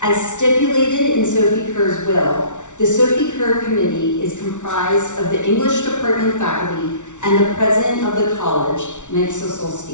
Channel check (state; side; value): late; right; 0.85 ms